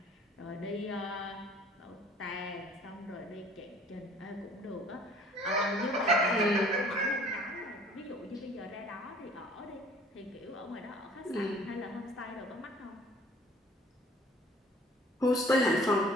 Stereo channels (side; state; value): both; normal; correlation 0.52